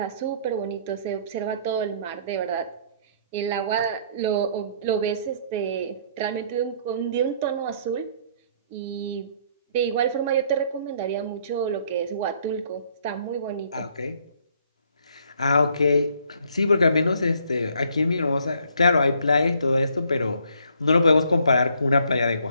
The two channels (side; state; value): both; inverted; correlation -0.64